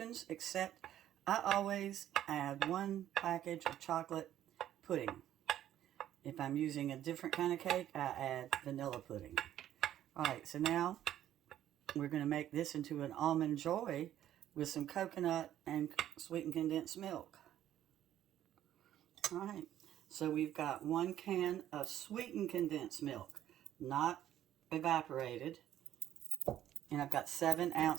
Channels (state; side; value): quieter; left; 11.8 dB